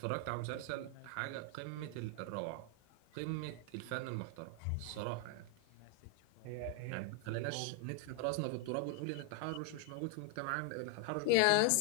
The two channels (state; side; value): different; both; correlation 0.00